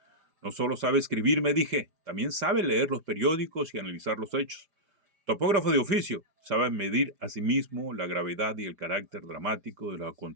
No solo sabe escribir, me dije, también sabe leer los periódicos y analizar los hechos. Topógrafo de oficio, sabe medir a sí mismo la gravedad y el carácter dramático de los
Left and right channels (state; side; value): late; left; 4.9 ms